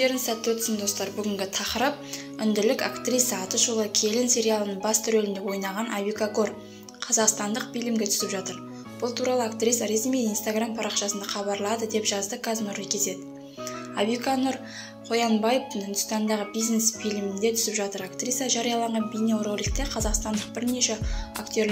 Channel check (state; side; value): identical; both; correlation 1.00